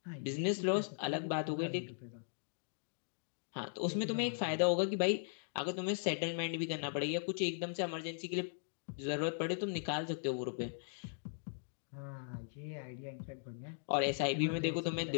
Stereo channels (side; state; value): right; silent; digital silence